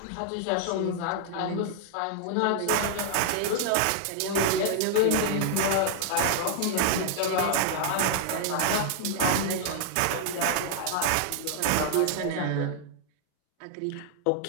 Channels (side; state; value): both; different; correlation -0.01